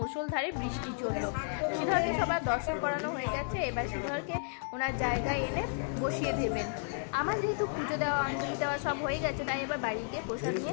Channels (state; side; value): silent; right; digital silence